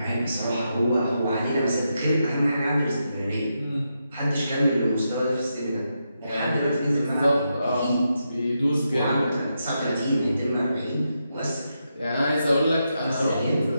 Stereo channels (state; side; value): inverted; both; correlation -0.85